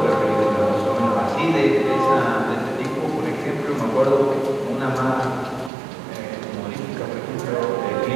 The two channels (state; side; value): drops out; left; at 5.7 s